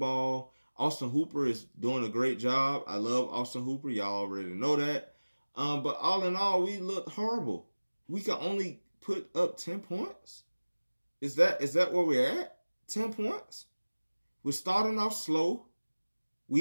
Austin Hooper is doing a great job. I love Austin Hooper. Y'all already know that. But all in all, we look horrible. We can only put up 10 points. Is that where we're at? 10 points? We're starting off slow.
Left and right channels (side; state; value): both; inverted; correlation -1.00